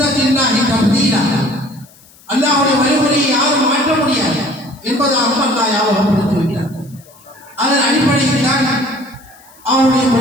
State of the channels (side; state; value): left; noise; hiss, 26 dB below the sound